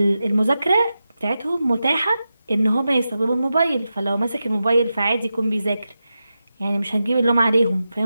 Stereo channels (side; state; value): both; inverted; correlation -0.91